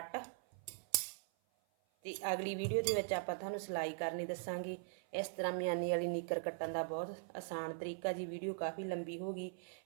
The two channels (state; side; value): silent; left; 50 dB below the other